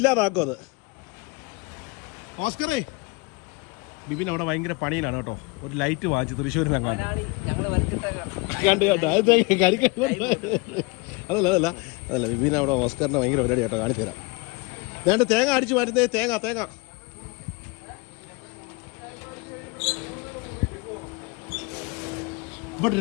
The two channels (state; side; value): quieter; right; 27.1 dB